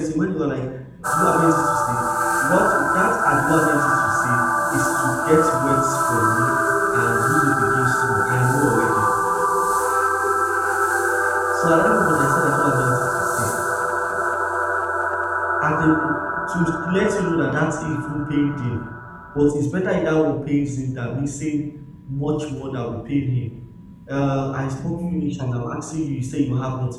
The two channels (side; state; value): both; identical; correlation 1.00